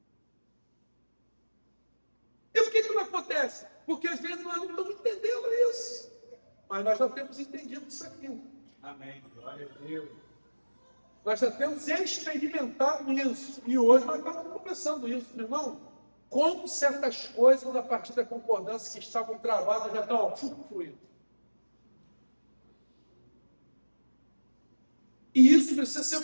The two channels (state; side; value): inverted; both; correlation -1.00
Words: E por que não acontece? Porque às vezes nós não estamos entendendo isso. Mas nós já temos entendido isso aqui. Amém. Glória a Deus. Nós já temos experimentado isso. E hoje nós estamos começando isso, meu irmão. Como certas coisas, a partir da concordância que estavam travadas, já estão fluindo. E isso precisa ser